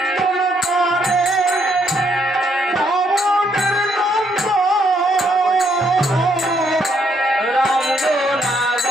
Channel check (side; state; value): both; normal; correlation 0.72